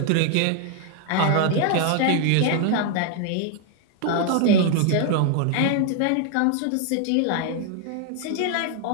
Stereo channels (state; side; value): different; both; correlation 0.00